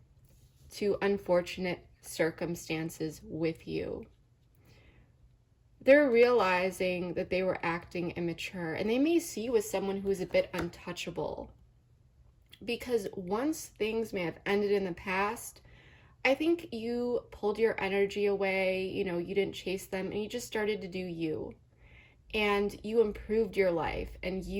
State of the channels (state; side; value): identical; both; correlation 1.00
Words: to unfortunate circumstances with you. They're realizing that they were acting immature, and they may see you as someone who is a bit untouchable. Because once things may have ended in the past, I think you pulled your energy away, you know, you didn't chase them, and you just started to do you. And you improved your life, and